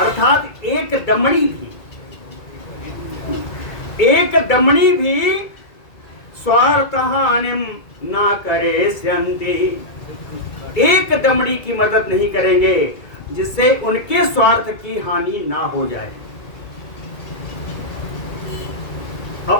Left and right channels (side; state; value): right; late; 2.3 ms